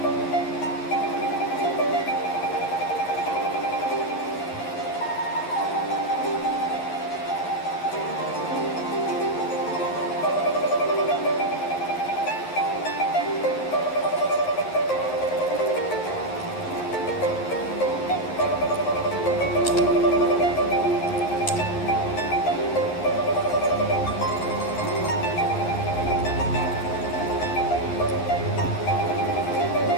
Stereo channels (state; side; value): late; right; 11 ms